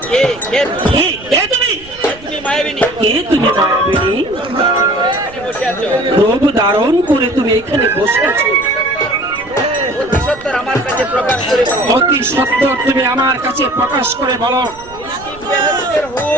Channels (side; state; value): right; noise; rumble, 21 dB below the sound